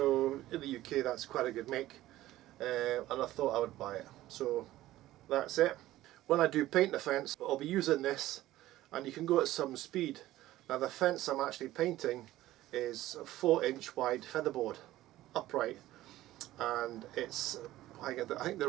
in the UK that's quite a good make, and I thought I would buy it. So that's it. When I do paint the fence, I'll be using this, and you can go at some speed. Now the fence I'm actually painting is a 4-inch wide featherboard, upright, and it's, I think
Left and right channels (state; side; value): quieter; left; 15.4 dB